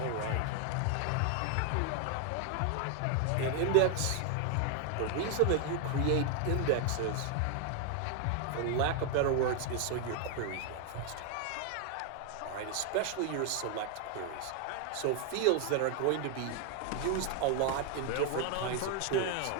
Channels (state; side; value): different; both; correlation 0.01